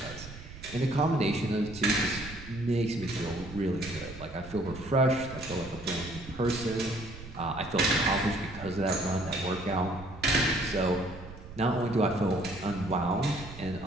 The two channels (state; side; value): noise; right; rumble, 14 dB below the sound